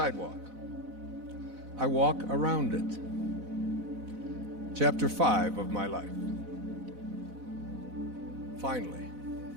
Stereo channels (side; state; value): left; late; 4.0 ms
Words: I walk around it. Chapter 5 of my life. Finally,